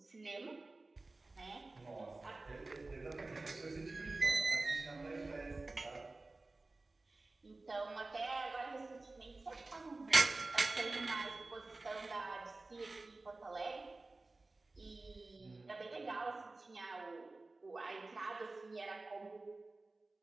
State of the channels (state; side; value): quieter; left; 3.2 dB